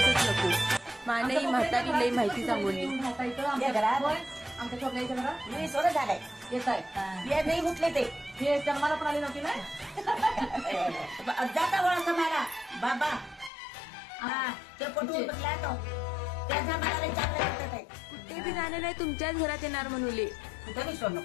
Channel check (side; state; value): right; drops out; at 13.5 s